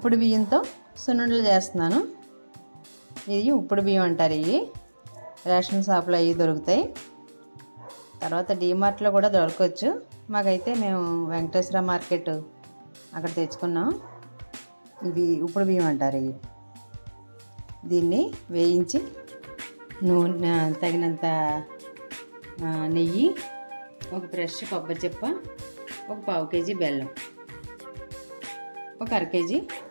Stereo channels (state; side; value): inverted; both; correlation -1.00